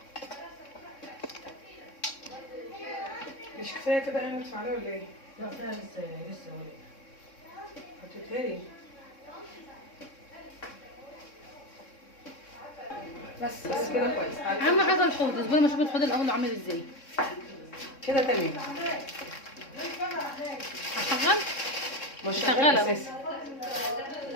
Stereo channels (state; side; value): late; right; 3.6 ms